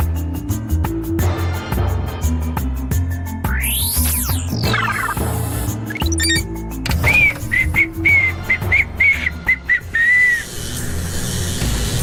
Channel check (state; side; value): identical; both; correlation 1.00